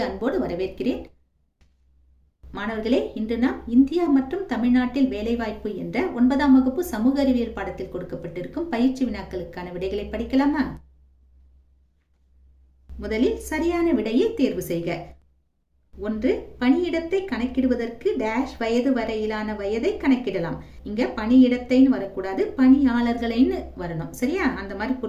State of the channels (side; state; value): both; identical; correlation 1.00